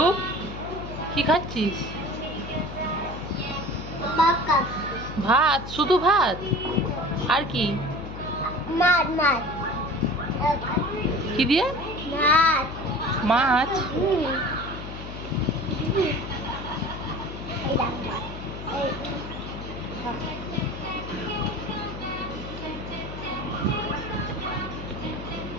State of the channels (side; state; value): left; noise; hum, 10 dB below the sound